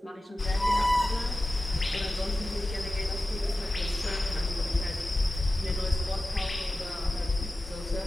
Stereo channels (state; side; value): normal; both; correlation 0.95